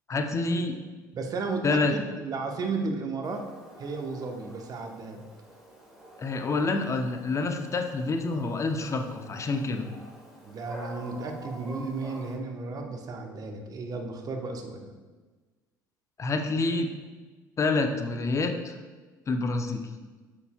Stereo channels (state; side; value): normal; both; correlation 0.58